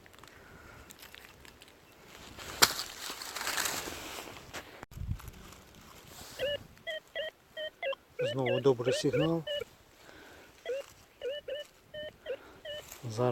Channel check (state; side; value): identical; both; correlation 1.00